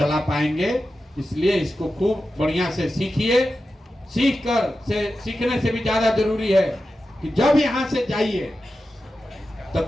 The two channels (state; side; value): normal; both; correlation 0.92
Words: पाएंगे। इसलिए इसको खूब बढ़िया से सीखिए। सीखने से भी ज्यादा जरूरी है कि जब यहाँ से जाइए तो